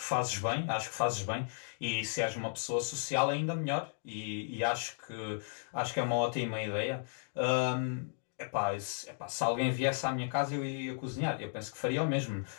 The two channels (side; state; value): right; silent; digital silence